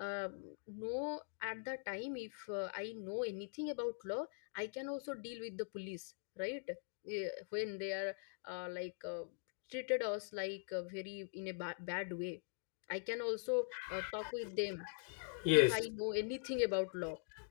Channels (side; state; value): right; silent; digital silence